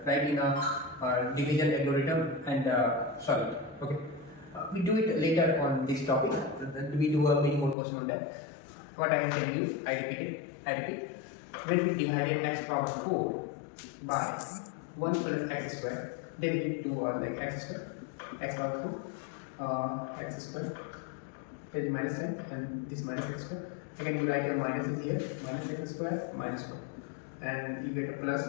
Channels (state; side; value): drops out; right; at 7.8 s